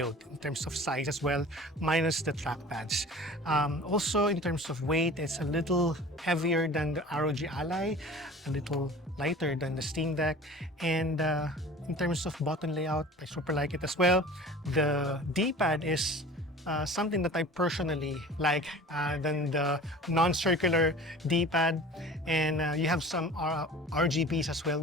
in terms of size as well, minus the trackpads. Also, in terms of weight, it's a little heavier than the ROG Ally, a little lighter than the Steam Deck, and in terms of button layout, I super like it as well. The D-pad is something that I personally like than the non-circular D-pad, and you have some RGBs as well,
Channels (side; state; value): both; normal; correlation 0.41